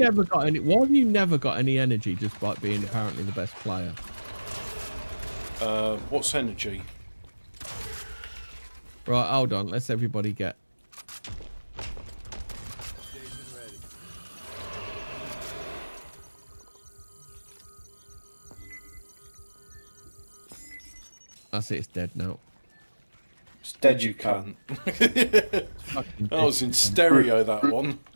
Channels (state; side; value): inverted; both; correlation -1.00